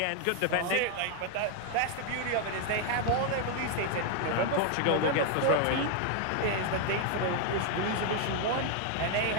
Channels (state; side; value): different; both; correlation 0.00